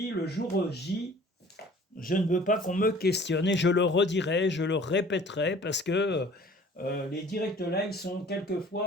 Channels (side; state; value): both; normal; correlation 0.50